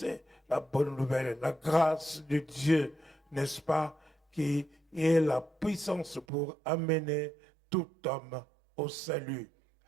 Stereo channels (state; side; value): drops out; left; at 6.2 s